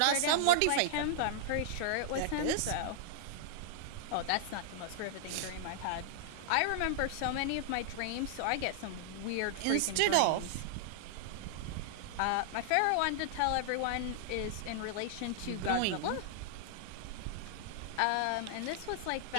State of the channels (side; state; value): both; different; correlation -0.01